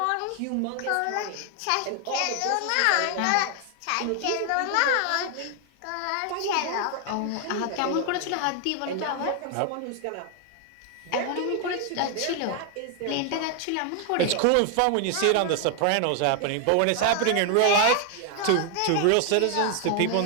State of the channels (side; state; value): both; different; correlation 0.00